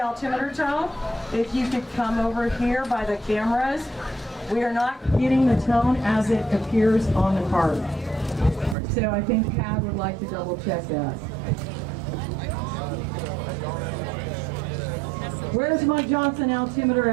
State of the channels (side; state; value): left; drops out; at 8.8 s